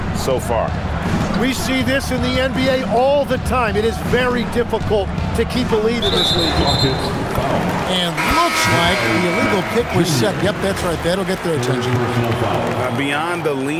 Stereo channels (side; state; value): both; identical; correlation 1.00